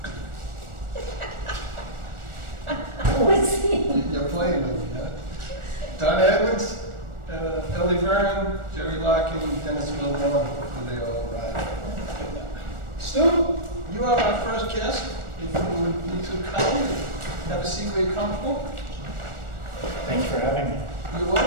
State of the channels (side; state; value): left; late; 1.4 ms